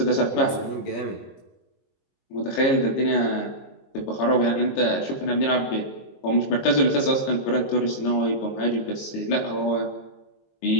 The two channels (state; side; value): late; right; 22 ms